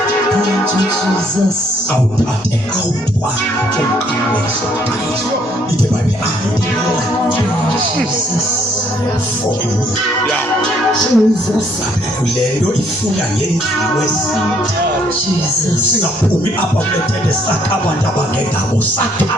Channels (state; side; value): normal; both; correlation 0.67